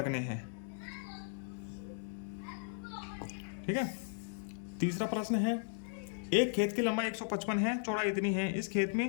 हैं, ठीक है। तीसरा प्रश्न है, एक खेत की लंबाई 155 है, चौड़ाई इतनी है, इस खेत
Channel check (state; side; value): silent; right; digital silence